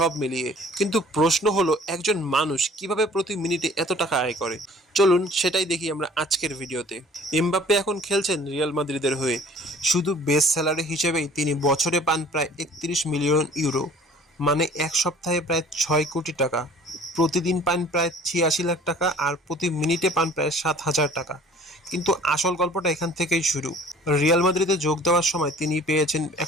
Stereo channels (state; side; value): normal; both; correlation 0.51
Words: মিলিয়ে। কিন্তু প্রশ্ন হলো, একজন মানুষ কিভাবে প্রতি মিনিটে এত টাকা আয় করে? চলুন সেটাই দেখি আমরা আজকের ভিডিওতে। এমবাপ্পে এখন খেলছেন রিয়াল মাদ্রিদের হয়ে। শুধু বেস স্যালারি হিসেবেই তিনি বছরে পান প্রায় ৩১ মিলিয়ন ইউরো, মানে এক সপ্তাহে প্রায় ৬ কোটি টাকা। প্রতিদিন পান প্রায় ৮৬ লাখ টাকা, আর প্রতি মিনিটে পান প্রায় ৭,০০০ টাকা। কিন্তু আসল গল্পটা এখান থেকেই শুরু। রিয়াল মাদ্রিদে যোগ দেওয়ার সময় তিনি পেয়েছেন